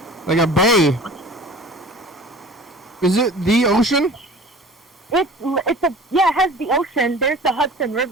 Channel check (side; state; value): both; normal; correlation 0.42